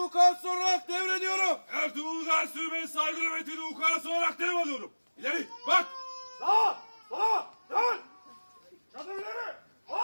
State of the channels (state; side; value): inverted; both; correlation -1.00